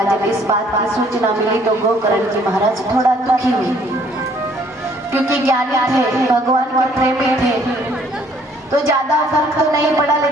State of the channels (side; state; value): both; normal; correlation 0.61